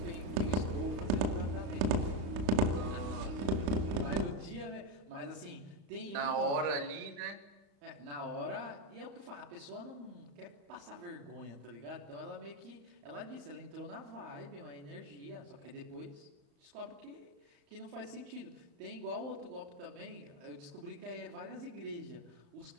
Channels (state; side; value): late; left; 35 ms